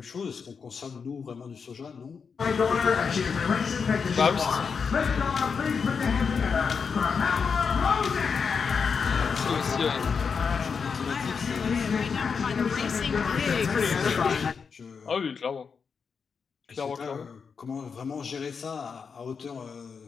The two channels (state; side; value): quieter; right; 5.8 dB